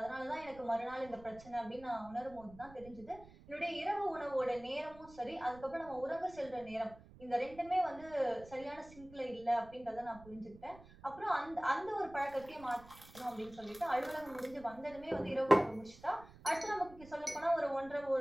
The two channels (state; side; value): noise; right; rumble, 20 dB below the sound